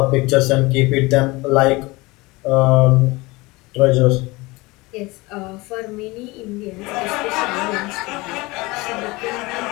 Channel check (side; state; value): right; quieter; 22.9 dB